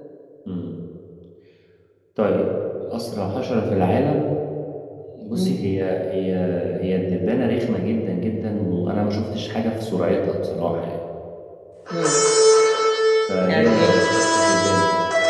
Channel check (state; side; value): identical; both; correlation 1.00